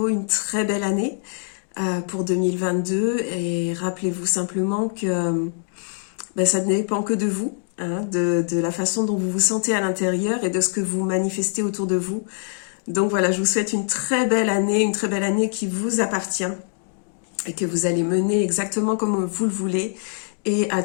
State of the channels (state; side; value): silent; right; 63 dB below the other